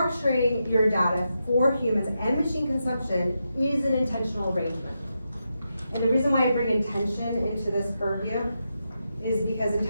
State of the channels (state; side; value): inverted; both; correlation -0.86